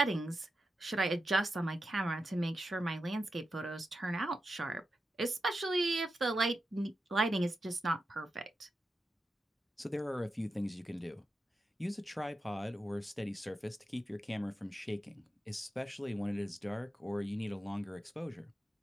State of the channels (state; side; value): normal; both; correlation 0.89